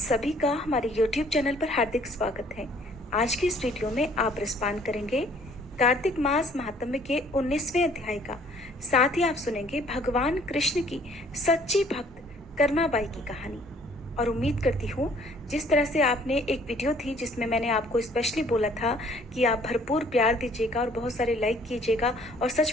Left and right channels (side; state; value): both; normal; correlation 0.59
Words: का हमारे YouTube चैनल पर हार्दिक स्वागत है। आज की इस वीडियो में आप रसपान करेंगे कार्तिक मास महात्म्य के 19वें अध्याय का। साथ ही आप सुनेंगे भगवान कृष्ण की सच्ची भक्त कर्माबाई की कहानी। और उम्मीद करती हूँ जिस तरह से आपने एक वीडियो थी जिसमें मैंने आपको स्पेशली बोला था कि आप भरपूर प्यार दीजिएगा और बहुत सारे लाइक कीजिएगा, और